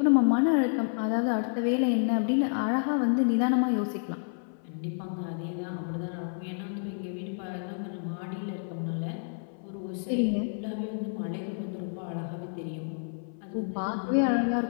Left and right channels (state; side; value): silent; right; 56 dB below the other